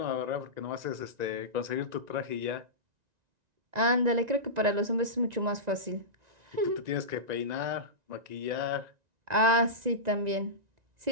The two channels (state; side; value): late; left; 1.9 ms